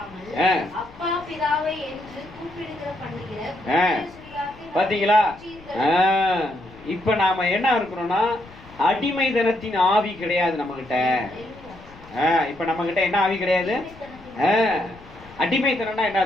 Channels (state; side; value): noise; left; rumble, 22 dB below the sound